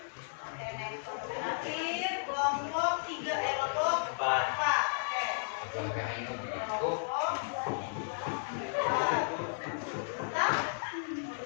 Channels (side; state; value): right; silent; digital silence